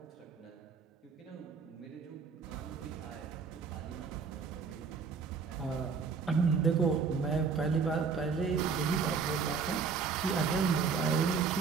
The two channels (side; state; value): left; quieter; 5.5 dB